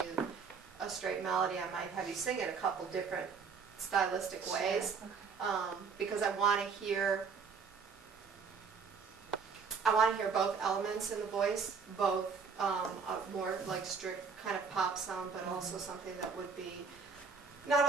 you a straight melody. I might have you sing it a couple different stylistic ways, because I want to hear both elements in the voice, both a more like strict kind of pop sound, but also something that would be not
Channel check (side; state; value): left; quieter; 5.5 dB